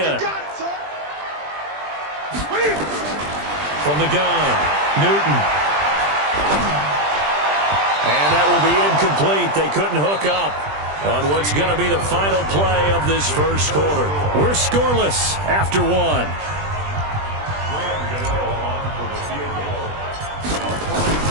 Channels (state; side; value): late; left; 20 ms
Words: From the gun, Newton. And that will be incomplete. They couldn't hook up on what's going to be the final play of this first quarter. We're scoreless after 1.